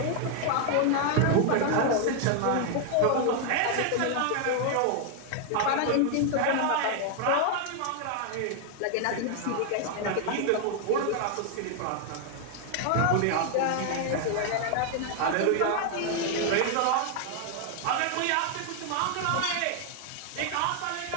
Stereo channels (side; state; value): both; different; correlation 0.00